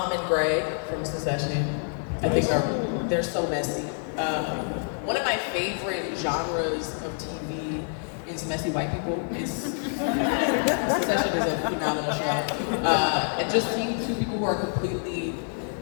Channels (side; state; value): right; silent; 60 dB below the other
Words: and Greg from Succession. I think they're so messy. One of my favorite genres of TV is messy white people. Succession is a phenomenal show. And just seeing two people who are completely